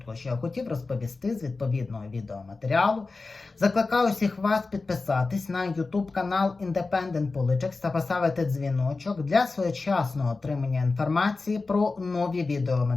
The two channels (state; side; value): quieter; right; 3.8 dB